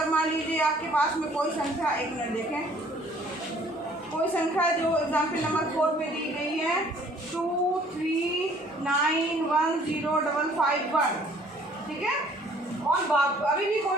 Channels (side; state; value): both; normal; correlation 0.57